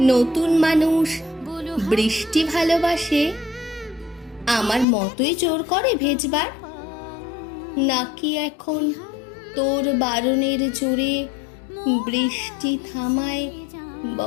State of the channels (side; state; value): right; drops out; at 4.9 s